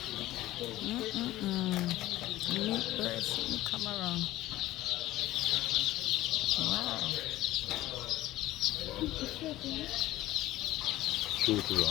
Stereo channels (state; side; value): quieter; right; 15.9 dB